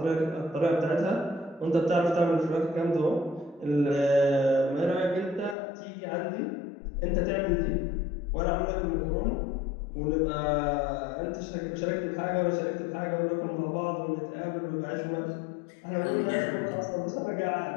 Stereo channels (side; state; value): right; drops out; at 5.6 s